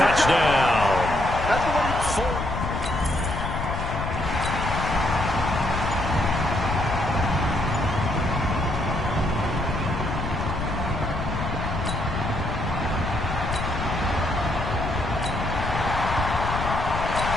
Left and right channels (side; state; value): left; noise; rumble, 4 dB below the sound